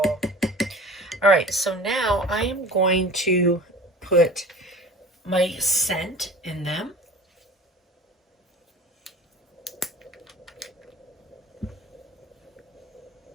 All right, so now I am going to put my scent in them.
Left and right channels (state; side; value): normal; both; correlation 0.41